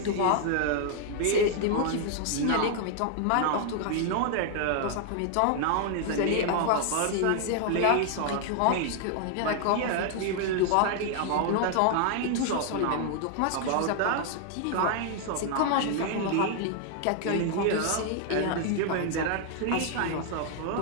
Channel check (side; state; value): both; different; correlation 0.00